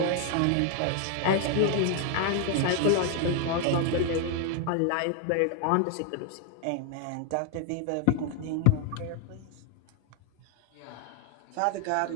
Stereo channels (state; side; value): different; both; correlation 0.01